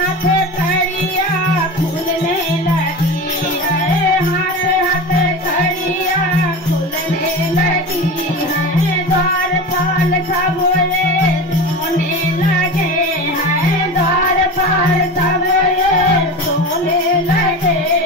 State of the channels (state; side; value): normal; both; correlation 0.28